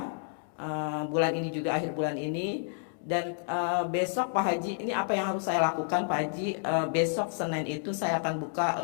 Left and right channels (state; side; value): silent; right; digital silence